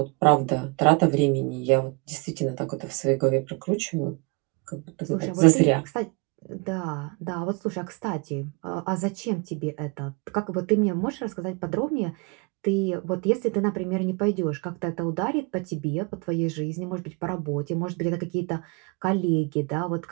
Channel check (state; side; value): quieter; left; 29.9 dB